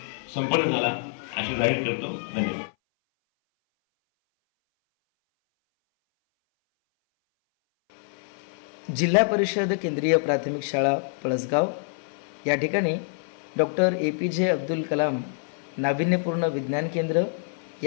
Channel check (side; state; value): right; silent; 58 dB below the other